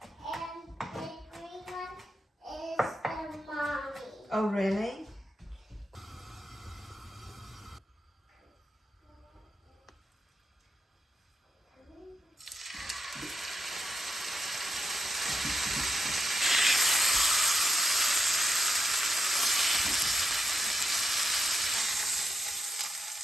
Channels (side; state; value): both; normal; correlation 0.82